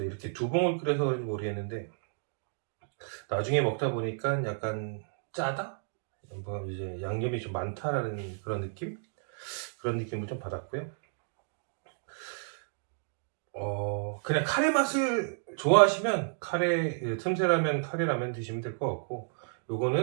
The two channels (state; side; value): silent; left; digital silence